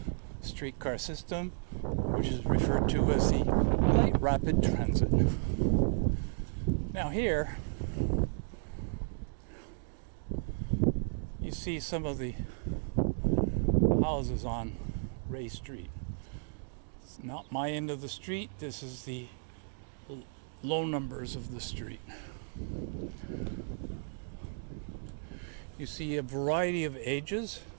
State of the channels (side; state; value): left; silent; digital silence